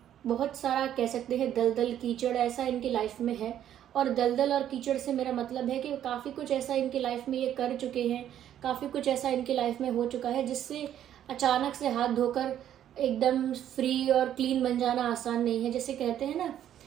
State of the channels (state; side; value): quieter; left; 10.8 dB